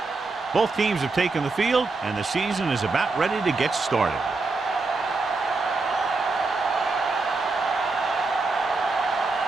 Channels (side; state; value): left; quieter; 3.8 dB